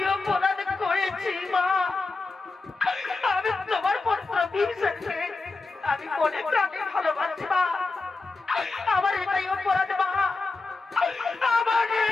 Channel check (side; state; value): right; quieter; 3.7 dB